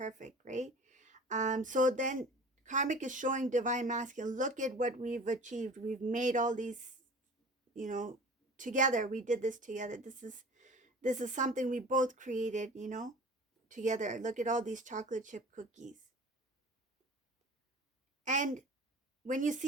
right? So then karmic is showing divine masculine, look at what we've achieved, we've made all these, you know together, we did this together, this is something we both created, together. Look at all these chocolate chip cookies. And when you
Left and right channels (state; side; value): normal; both; correlation 0.41